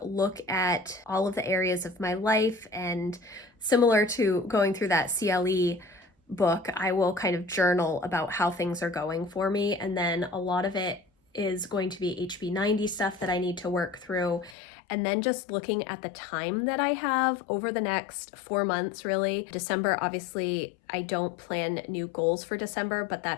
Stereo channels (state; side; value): drops out; right; at 14.6 s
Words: look at all of the areas of my life, and similar to going through that CLE book, I will kind of journal about how things are going for me. And then a lot of it is going to be HB90 stuff that I need to work through. And then just looking at the time that I have over the next 4 months, really. December, obviously, I don't plan new goals for December, but